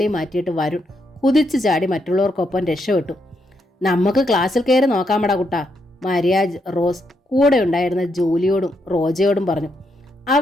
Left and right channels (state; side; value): normal; both; correlation 0.79